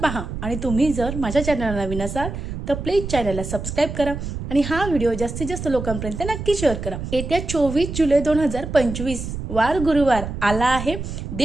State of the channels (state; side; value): noise; right; rumble, 7 dB below the sound